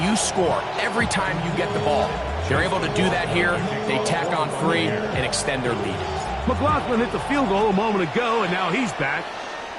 you score every time you get the ball? They're able to do that here. They tack on 3 and extend their lead. McLaughlin hit the field goal a moment ago, and now he's back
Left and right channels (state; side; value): identical; both; correlation 1.00